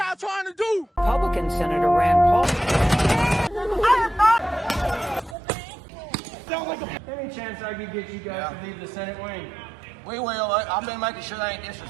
y'all trying to do? Republican Senator Rand Paul. Any chance I could get you guys to leave the Senate wing? We will. I've been making sure they ain't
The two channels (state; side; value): drops out; left; at 5.4 s